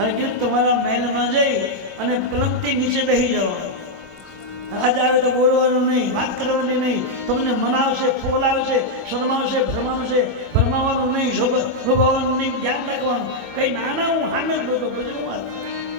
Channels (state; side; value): normal; both; correlation -0.02